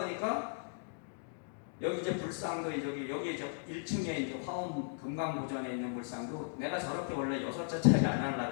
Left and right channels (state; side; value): silent; right; digital silence